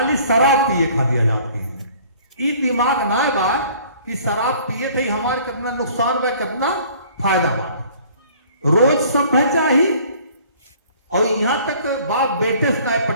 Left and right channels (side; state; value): both; inverted; correlation -0.53